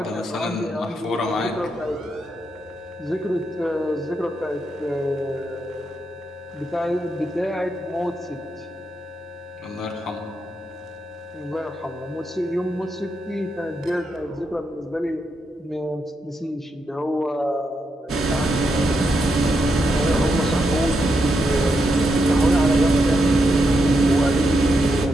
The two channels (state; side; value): normal; both; correlation 0.82